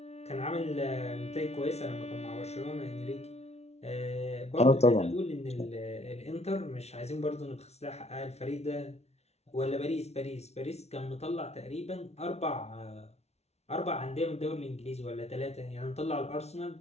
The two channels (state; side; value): late; right; 0.31 ms